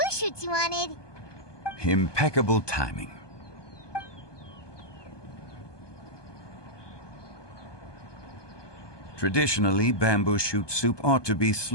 shoots you wanted. Impeccable timing. Traditionally, bamboo shoot soup ought to be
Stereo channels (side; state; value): right; late; 1.2 ms